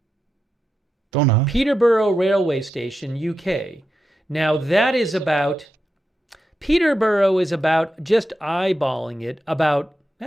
Don't know. Peterborough Railway Station, UK. Now that is about, Peterborough is about, just eyeballing it, about,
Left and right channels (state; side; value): normal; both; correlation 0.88